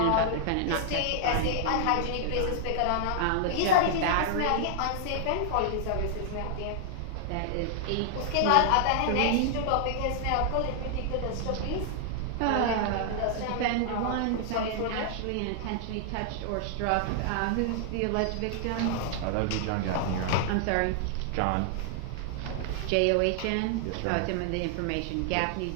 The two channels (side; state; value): both; different; correlation -0.01